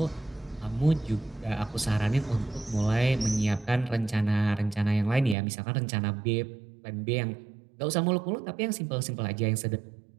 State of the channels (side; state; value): left; drops out; at 5.4 s